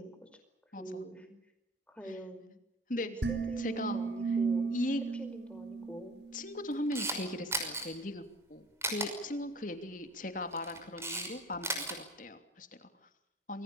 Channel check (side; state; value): both; normal; correlation 0.45